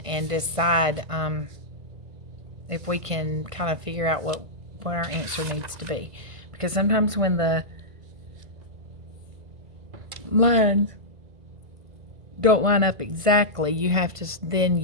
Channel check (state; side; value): late; left; 1.5 ms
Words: and decide if we can kind of figure out what our answer needs to be. Because sometimes when the lines don't line up exactly, you have to then